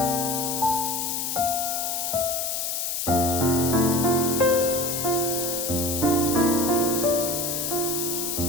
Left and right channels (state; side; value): noise; left; hiss, 1 dB below the sound